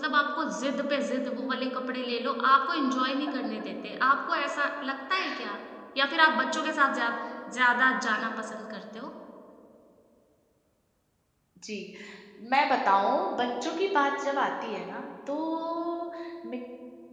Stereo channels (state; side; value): identical; both; correlation 1.00